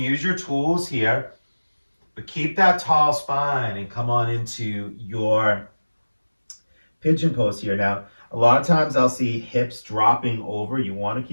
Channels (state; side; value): inverted; both; correlation -1.00